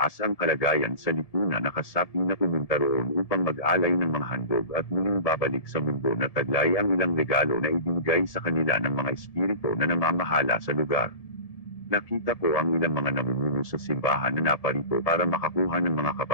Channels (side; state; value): right; late; 1.7 ms